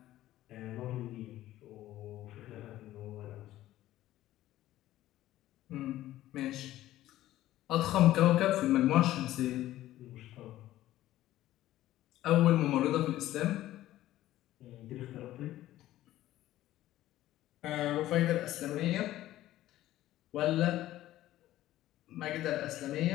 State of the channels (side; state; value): right; quieter; 14.6 dB